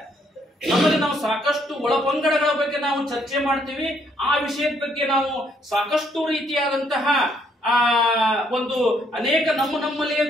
ನಮ್ಮಲ್ಲಿ ನಾವು ಸಾಕಷ್ಟು ಒಳಪಂಗಡಗಳ ಬಗ್ಗೆ ನಾವು ಚರ್ಚೆ ಮಾಡ್ತೀವಿ. ಆ ವಿಷಯದ ಬಗ್ಗೆ ನಾವು ಸಾಕಷ್ಟು ರೀತಿಯಾದಂತಹ ಒಂದು ಅನೇಕ ನಮ್ಮಲ್ಲಿಯೇ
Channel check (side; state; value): both; normal; correlation 0.69